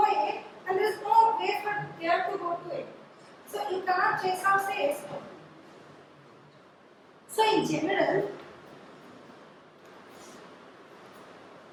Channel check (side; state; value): both; identical; correlation 1.00